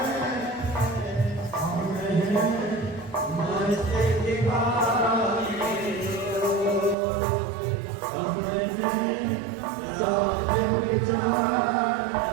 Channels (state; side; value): drops out; left; at 7.0 s